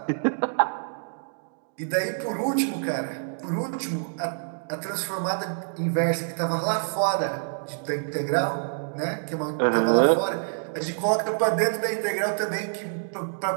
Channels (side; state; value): left; silent; digital silence